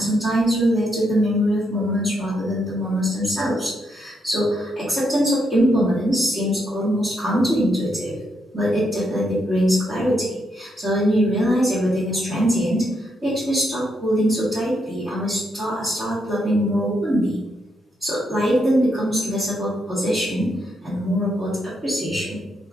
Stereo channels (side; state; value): both; normal; correlation 0.79